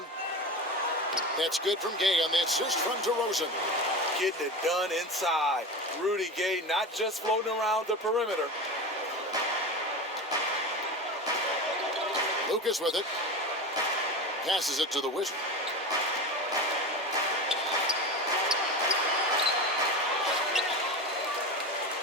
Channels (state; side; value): normal; both; correlation 0.26